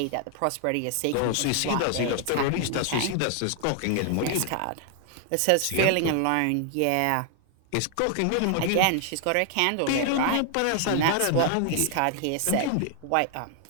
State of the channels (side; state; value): both; different; correlation 0.00